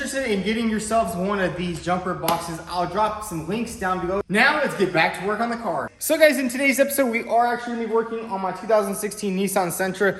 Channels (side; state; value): both; identical; correlation 1.00